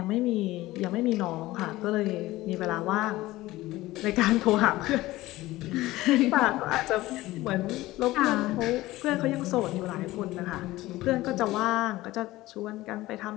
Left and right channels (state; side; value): quieter; right; 17.7 dB